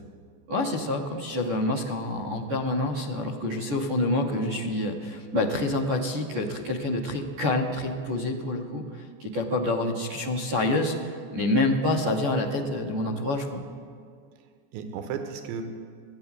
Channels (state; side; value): late; left; 14 ms